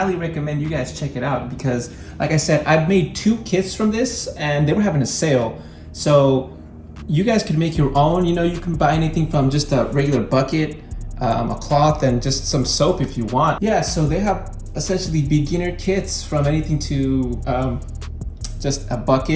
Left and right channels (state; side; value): identical; both; correlation 1.00